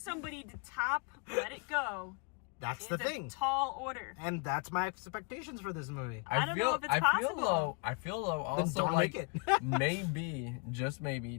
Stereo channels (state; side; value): quieter; right; 34.7 dB